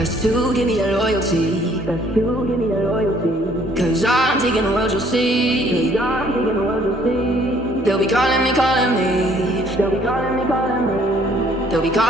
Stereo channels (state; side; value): normal; both; correlation 0.61